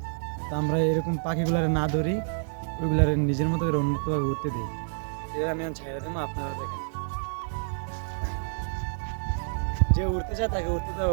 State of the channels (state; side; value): silent; left; digital silence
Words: তো আমরা এরকম পাখিগুলারে না ধরি, ওইগুলারে নিজের মতো করে উন্মুক্তভাবে উঠতে দিই। এটা আমি ছেড়ে দেবো, আপনারা দেখেন। যে উঠতে চায় তাকে উঠতে